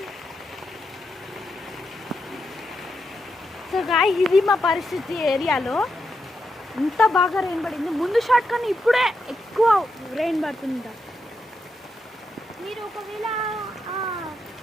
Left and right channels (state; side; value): normal; both; correlation 0.84